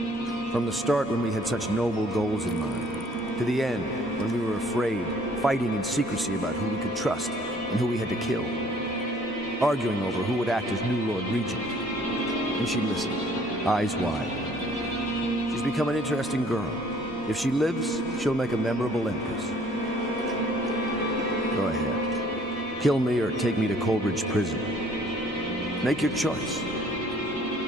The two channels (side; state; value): both; normal; correlation 0.58